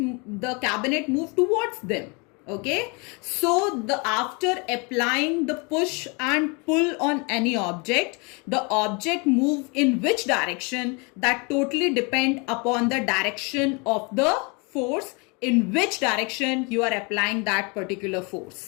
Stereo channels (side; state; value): right; quieter; 30.8 dB